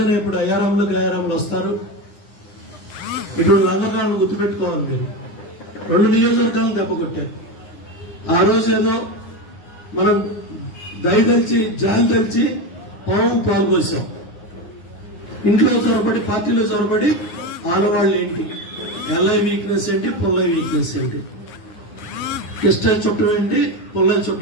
ఇప్పుడు అయారాములు వస్తారు. ఇప్పుడు రంగనాథ్ గుర్తుపెట్టుకోవాలి. మీరు 2 నియోజకవర్గాలను దెబ్బ కొట్టారు. ఆ రోజు ఏదో మనం దయ తెలిసి జాలి తెలిసి పాల్పోసాం. ఇంట్లో చొరబడి పార్టీలో చొరబడి ఆడవాళ్ళు ఏంటి, ఎల్ఐ వీక్నెస్ ఏంటి, పుల్లై వీక్నెస్ ఏంటి, కిస్టల్ చుట్టం ఏంటి, పుల్లై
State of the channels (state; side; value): late; right; 9.6 ms